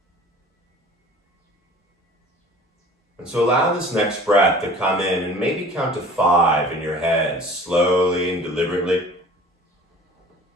And so allow this next breath to come in, and maybe count to 5 in your head, slowly and deliberately.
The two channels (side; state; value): both; normal; correlation 0.45